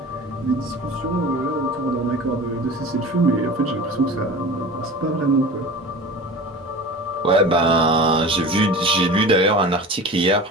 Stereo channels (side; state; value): both; normal; correlation 0.35